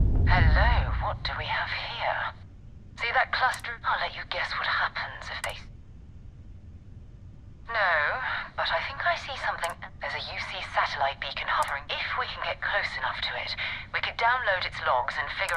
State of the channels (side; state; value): both; identical; correlation 1.00